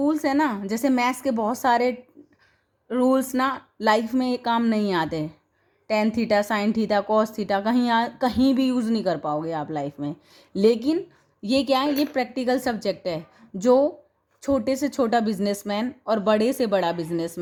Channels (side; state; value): both; identical; correlation 1.00